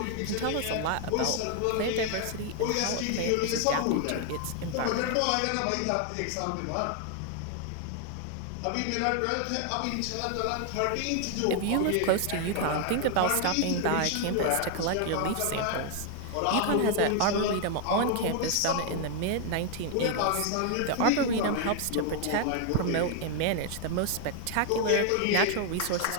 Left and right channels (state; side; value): different; both; correlation 0.00